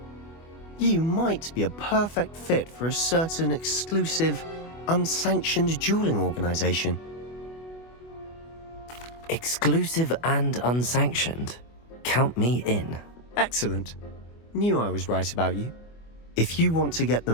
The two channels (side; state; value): right; late; 24 ms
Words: you might be a perfect fit for a certain exclusive, unsanctioned dueling organization. Exclusive and unsanctioned. Count me in. Excellent. Knew I was right about you. If you want to get the